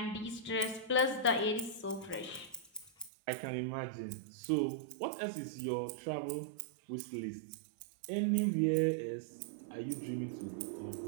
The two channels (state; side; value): drops out; left; at 3.1 s